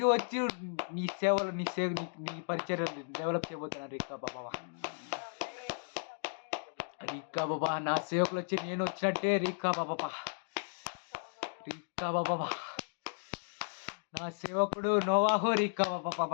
వచ్చి నీ సేవలు నీ పరిచర్యలు డెవలప్ చేయబోతున్నాను రిక్కా బాబా. రిక్కా బాబా నా సేవకులు వచ్చి నేను వచ్చినట్టే రిక్కా బాబా. రిక్కా బాబా నా సేవకుడు నోవాహు రిక్కా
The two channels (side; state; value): right; silent; digital silence